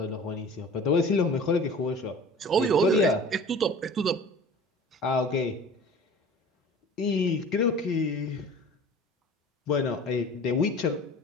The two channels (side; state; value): both; normal; correlation 0.42